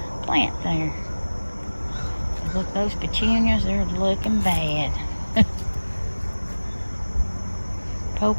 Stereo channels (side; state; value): both; inverted; correlation -1.00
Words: plant there. Look, those petunias, they're looking bad.